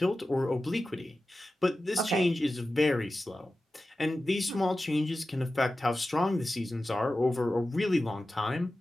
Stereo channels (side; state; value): both; normal; correlation 0.94